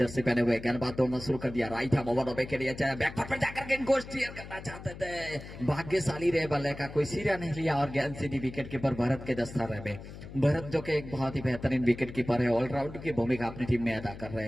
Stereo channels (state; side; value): noise; left; hum, 13 dB below the sound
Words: पहने हुए गेंदबाज दौड़ना शुरू कर दिया। राइट हैंड ओवर के लिए चाहे बैकफुट पर जाकर गेंद को स्टीयर करना चाहते थे, भाग्यशाली रहे बल्ले का कोई सिरा नहीं लिया और गेंद सीधी विकेट कीपर भरत के दस्तारे में। भरत जो कि एक बहुत ही बेहतरीन विकेट कीपर है, ऑलराउंडर की भूमिका अपनी टीम में अदा कर रहे